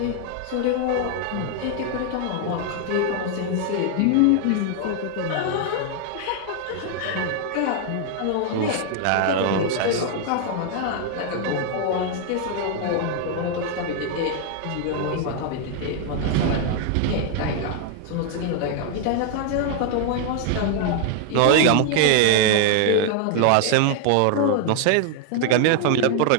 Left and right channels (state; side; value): different; both; correlation 0.00